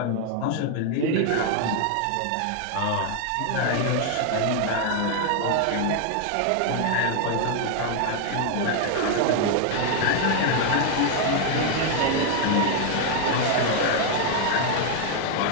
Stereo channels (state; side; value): different; both; correlation 0.00